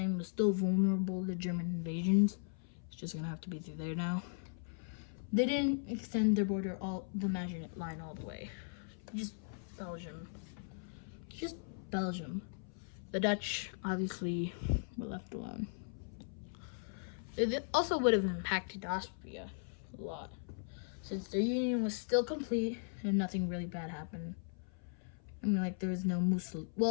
was still vulnerable to German invasions. It's just gonna have to be through there now. They didn't extend their border the Maginot Line all the way. Just Belgium. Just Belgium. The Dutch obviously were left alone. It also would have impacted Austria a lot, since their union was still complete and nothing really bad happened. I mean, like, there was no Mussolini.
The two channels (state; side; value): silent; right; 52 dB below the other